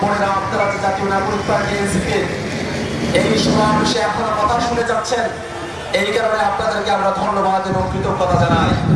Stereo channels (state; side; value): identical; both; correlation 1.00